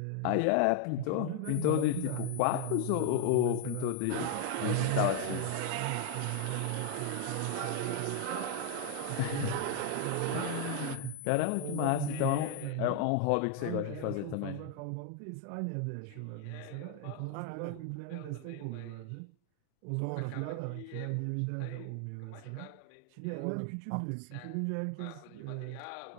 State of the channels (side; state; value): both; different; correlation 0.00